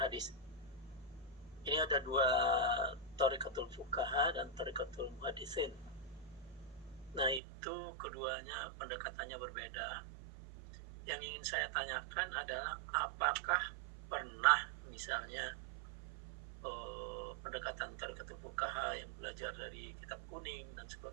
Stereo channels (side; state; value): left; drops out; at 7.4 s